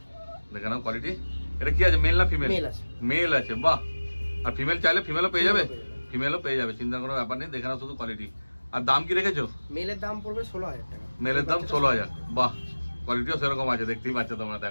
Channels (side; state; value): both; inverted; correlation -1.00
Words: দেখে নাও কোয়ালিটি। এটা কি আছে, মেল না ফিমেল? মেল আছে। মেল আছে, বাহ। আর ফিমেল চাইলে ফিমেলও পেয়ে যাবে? ফিমেলও পেয়ে যাবে, চিন্তার কোনো ব্যাপার নেই। দেখে নাও শুধু কোয়ালিটি। আর দাম কি রেখেছো? মেলের দাম পড়বে 16000 টাকা। মেলের দাম 16000। বাহ, কোয়ালিটিও সেরকম আছে, দেখতেই পাচ্ছ তোমরা।